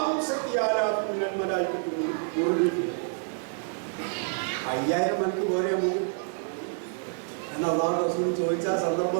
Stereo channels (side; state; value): left; silent; 59 dB below the other